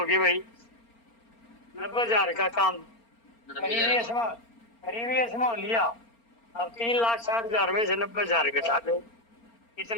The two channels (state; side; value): late; right; 4.3 ms